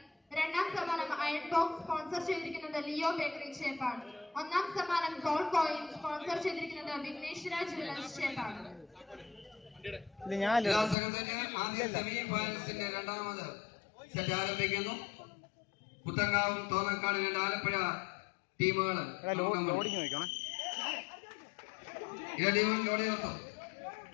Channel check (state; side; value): drops out; right; at 11.0 s